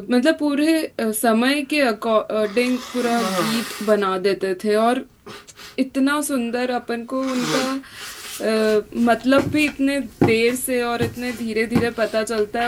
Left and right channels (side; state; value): both; identical; correlation 1.00